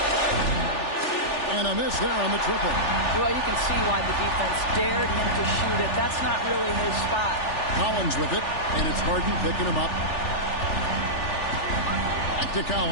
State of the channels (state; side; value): late; right; 3.4 ms